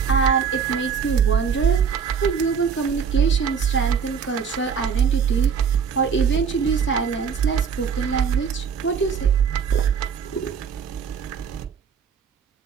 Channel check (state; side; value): quieter; left; 6.6 dB